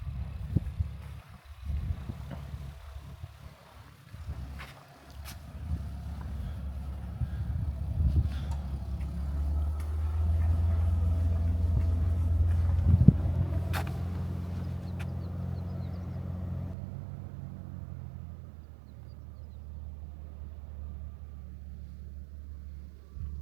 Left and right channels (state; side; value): drops out; left; at 16.8 s